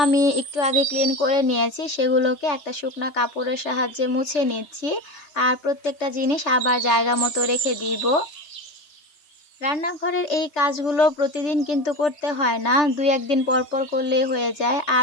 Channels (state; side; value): late; right; 3.4 ms